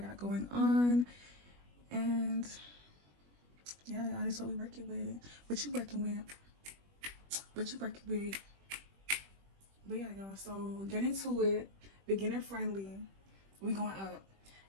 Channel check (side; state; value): left; late; 21 ms